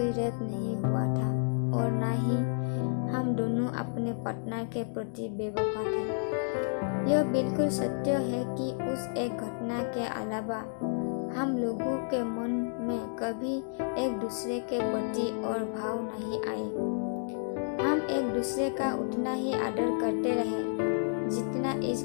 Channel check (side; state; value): right; silent; digital silence